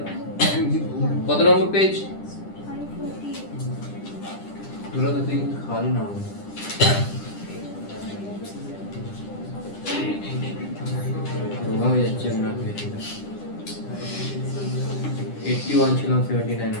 কত নম্বর পেজ? দুটো তো তুই খালি না 51 ছিলাম 79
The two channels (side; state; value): right; late; 10 ms